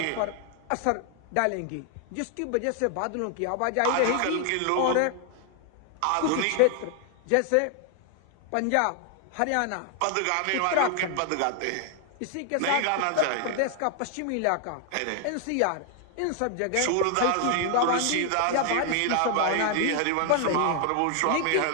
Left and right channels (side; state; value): both; different; correlation 0.00